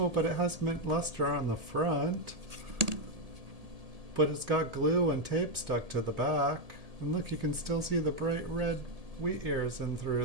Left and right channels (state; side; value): late; left; 1.8 ms